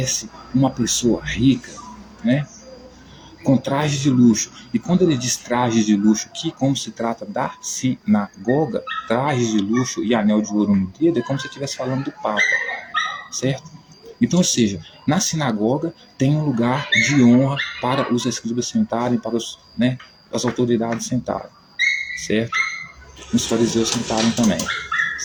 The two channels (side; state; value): both; identical; correlation 1.00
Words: uma pessoa rica, né, com trajes de luxo, e quando ele diz trajes de luxo aqui, como se trata da sinagoga, trajes de luxo e anel de ouro no dedo, é como se estivesse falando do Papa, certo? Então, ou seja, Na sinagoga tem um lugar de honra para os escribas sentarem, para as autoridades sentarem, certo? Os fariseus sentarem também,